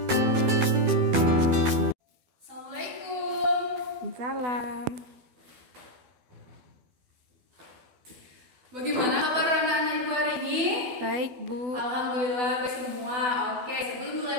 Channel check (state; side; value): late; left; 12 ms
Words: Assalamualaikum. Salam. Bagaimana kabar anak-anak ibu hari ini? Baik, Bu. Alhamdulillah baik semua. Oke, sebelum mulai